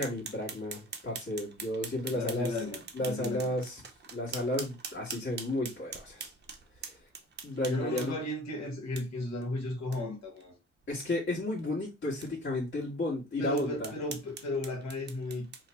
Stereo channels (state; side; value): normal; both; correlation 0.46